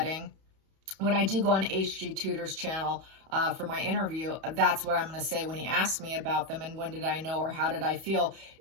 When I do go on H.G. Tudor's channel for my interview, that's what I'm going to say when he asked me about them and when did I know or how did I feel.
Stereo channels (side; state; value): left; late; 31 ms